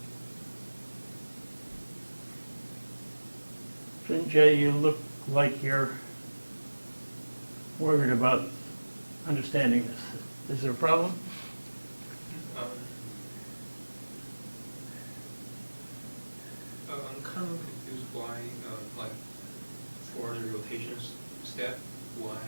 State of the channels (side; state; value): both; inverted; correlation -1.00